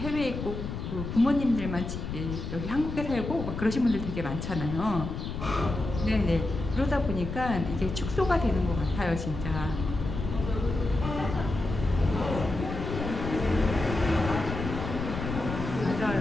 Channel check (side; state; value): left; noise; rumble, 6 dB below the sound